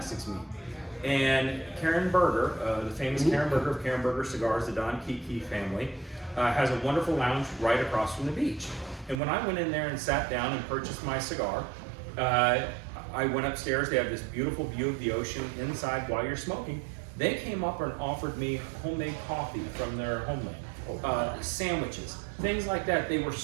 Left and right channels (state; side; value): drops out; left; at 9.2 s